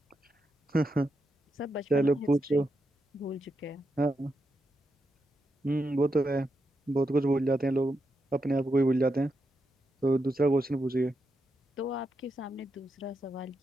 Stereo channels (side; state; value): both; normal; correlation 0.84